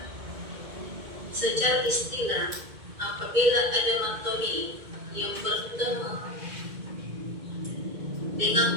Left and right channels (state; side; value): late; left; 2.1 ms